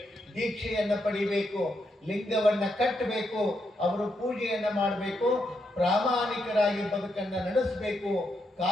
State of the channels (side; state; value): both; normal; correlation 0.81